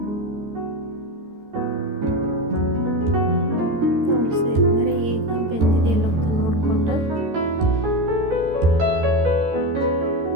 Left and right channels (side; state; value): left; late; 14 ms